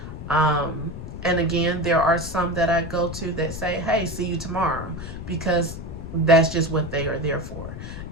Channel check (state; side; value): noise; left; rumble, 9 dB below the sound